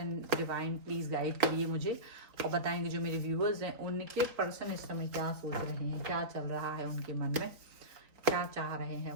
divine please guide करिए मुझे और बताएंगे जो मेरे व्यूअर्स हैं उनके पर्सन इस समय क्या सोच रहे हैं, क्या चल रहा है उनके मन में, क्या चाह रहे हैं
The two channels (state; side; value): late; left; 3.9 ms